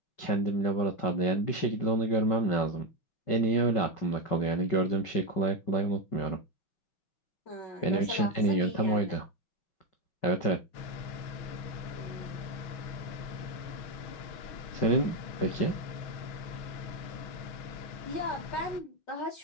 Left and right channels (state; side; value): late; right; 5.3 ms